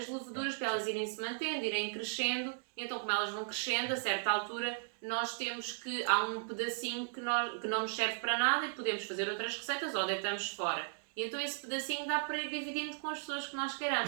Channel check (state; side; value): silent; left; digital silence